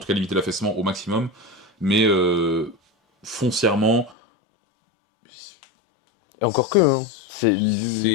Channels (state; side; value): drops out; right; at 4.2 s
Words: cas limiter l'affaissement au maximum. Mais foncièrement, et encore que